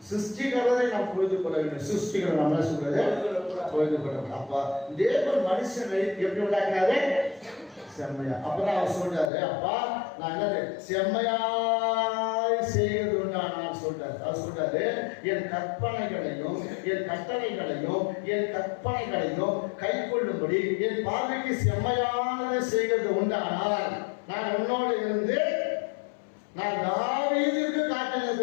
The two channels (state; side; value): drops out; right; at 9.3 s